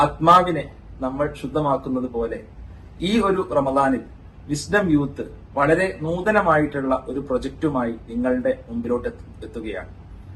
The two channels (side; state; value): both; identical; correlation 1.00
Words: ആത്മാവിനെ നമ്മൾ ശുദ്ധമാക്കുന്നത് പോലെ ഈ ഒരു റമദാനിൽ വിസ്ഡം യൂത്ത് വളരെ നൂതനമായിട്ടുള്ള ഒരു പ്രൊജക്റ്റുമായി നിങ്ങളുടെ മുമ്പിലോട്ട് എത്തുകയാണ്.